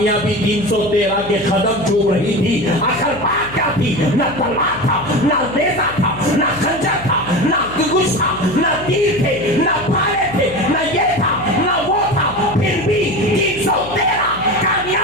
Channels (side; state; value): left; noise; hum, 15 dB below the sound